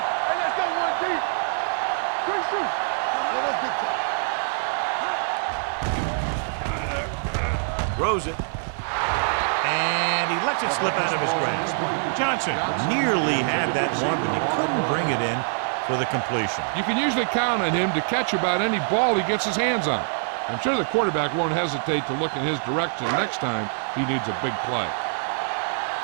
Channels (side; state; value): left; silent; digital silence